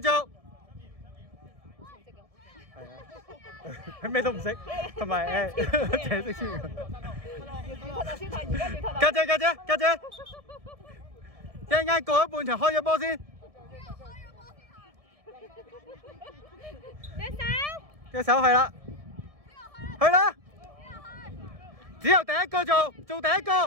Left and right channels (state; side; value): late; left; 1.7 ms